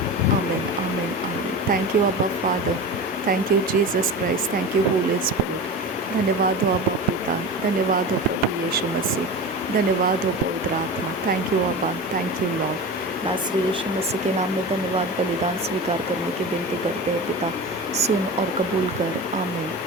आमीन आमीन आमीन। थैंक यू अब्बा father, thank you Jesus Christ, thank you Holi spirit. धन्यवाद हो अब्बा पिता, धन्यवाद हो प्रभु यीशु मसीह, धन्यवाद हो पवित्र आत्मा। थैंक यू अब्बा, थैंक यू लॉर्ड। नासरी यीशु मसीह के नाम में धन्यवाद बलिदान स्वीकार करने की विनती करते हैं पिता, सुन और कबूल कर। आमीन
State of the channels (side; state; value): both; normal; correlation 0.29